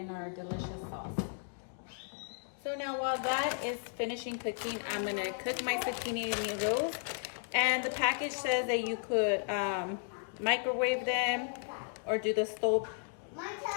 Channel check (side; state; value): right; silent; 55 dB below the other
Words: our delicious sauce. So now while that is finishing cooking, I'm gonna cook my zucchini noodles. And the package says that you could microwave them or do the stove